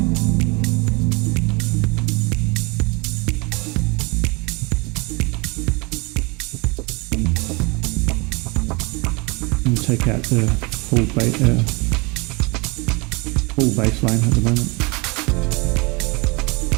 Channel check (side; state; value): left; quieter; 28.0 dB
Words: And take out the full bass line at the moment.